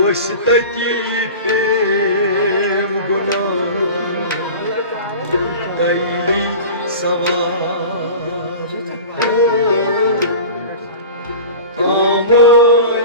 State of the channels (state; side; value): inverted; both; correlation -0.35